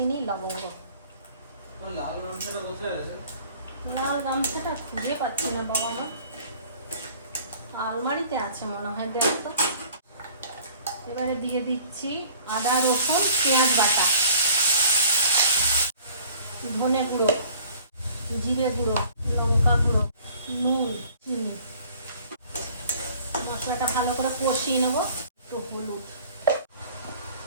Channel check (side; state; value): both; inverted; correlation -0.51